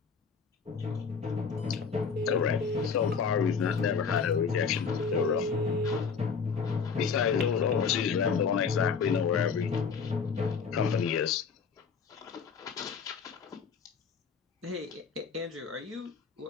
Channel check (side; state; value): right; quieter; 5.8 dB